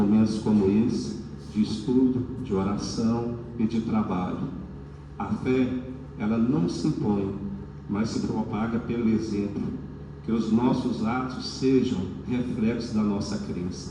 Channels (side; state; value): both; identical; correlation 1.00